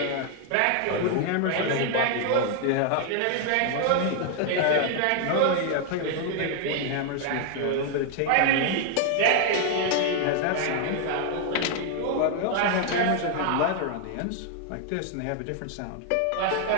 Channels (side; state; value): both; different; correlation 0.00